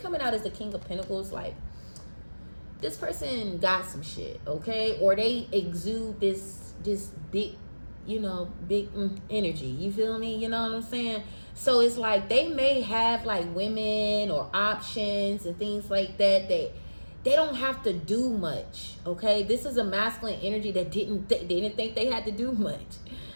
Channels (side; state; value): both; inverted; correlation -1.00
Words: out as the King of Pentacles, like, this person got some shit, okay? Or they exude this big, you know, big energy. You feel me? You know what I'm saying? So it's like they may have like women or options and things like that. They don't have to do much, okay? This is a masculine energy that didn't think they had to do much.